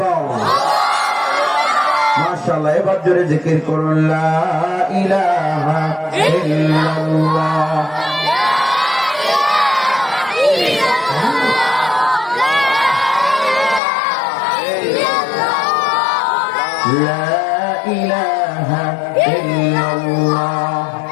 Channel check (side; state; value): right; drops out; at 13.8 s